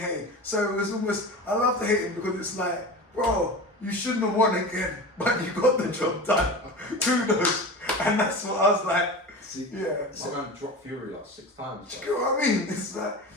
So it was almost, I love to hate him because it's like, bro, you shouldn't have won again, but you got the job done. Kudos. And that's what I was like, yeah. My man dropped Fury like 6 times. Do you know what I mean? It's like,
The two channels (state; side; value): normal; both; correlation 0.30